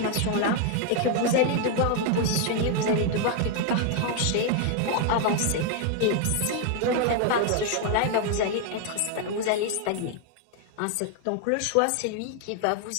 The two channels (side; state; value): both; different; correlation 0.00